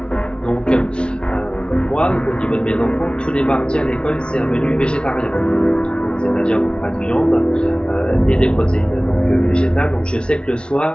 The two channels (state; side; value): late; right; 0.056 ms